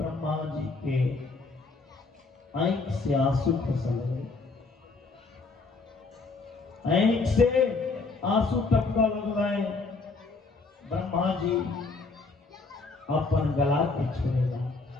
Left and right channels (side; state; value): right; quieter; 3.9 dB